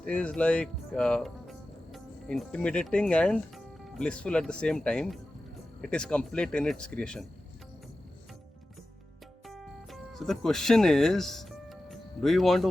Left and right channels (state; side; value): normal; both; correlation 0.94